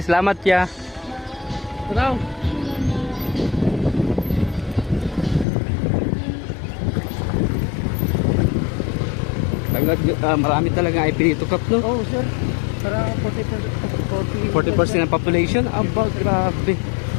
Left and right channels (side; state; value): right; drops out; at 5.5 s